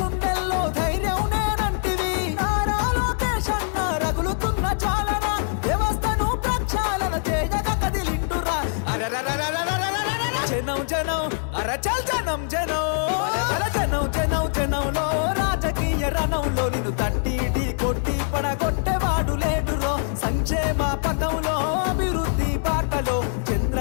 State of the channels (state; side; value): silent; right; digital silence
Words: ధైర్యం నేనంటివి నారా లోకేష్ అన్న రగులుతున్న చాలన వ్యవస్థను ప్రక్షాళన చేయగా కదిలిండురా జనం జనం అరచల్ జనం జనం జనం జనం జనంలో రాజకీయ రణంలో నిన్ను తట్టి కొట్టి పడగొట్టేవాడు లేడురో సంక్షేమ పథంలో అభివృద్ధి బాటలో